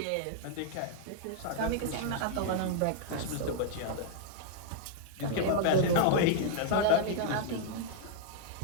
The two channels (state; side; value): different; both; correlation -0.01